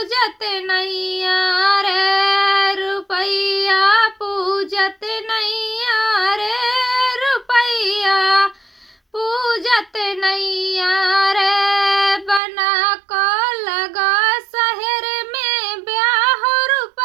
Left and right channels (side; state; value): left; drops out; at 12.4 s